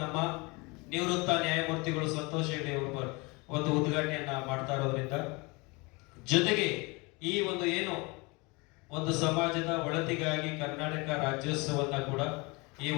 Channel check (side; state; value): right; quieter; 27.0 dB